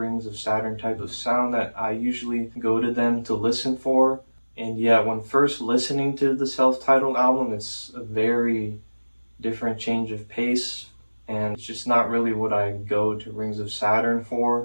of Saturn type of sound that I usually go to them to listen for. And yeah, when first listening to the self-titled album, it's a very different change of pace, and it's just not really what I go to Rings of Saturn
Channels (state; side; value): inverted; both; correlation -1.00